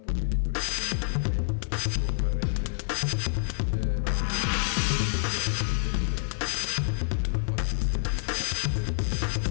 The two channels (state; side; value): silent; right; 60 dB below the other